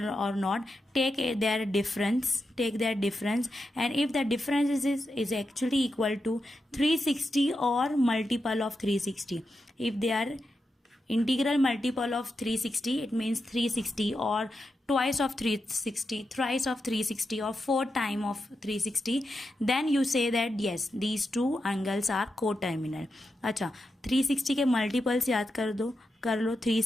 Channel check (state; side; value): normal; both; correlation 0.88